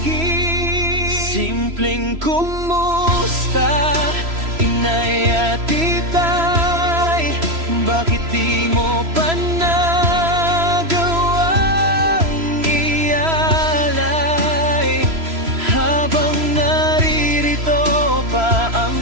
Simpleng kumusta, inay at itay, bakit di mo pa nagawang ialay? Habang naririto pa ang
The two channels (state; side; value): late; left; 3.0 ms